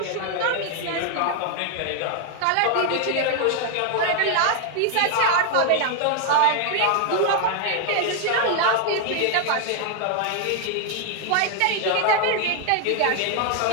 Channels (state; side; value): different; both; correlation 0.00